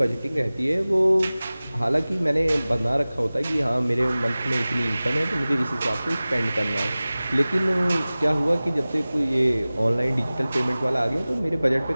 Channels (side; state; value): both; inverted; correlation -0.98